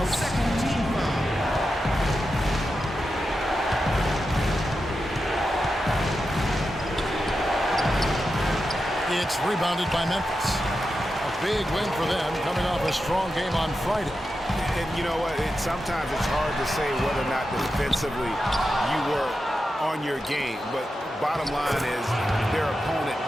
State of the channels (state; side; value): normal; both; correlation 0.89